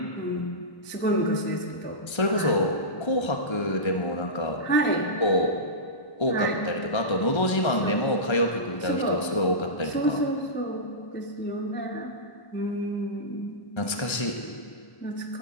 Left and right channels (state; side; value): late; right; 1.3 ms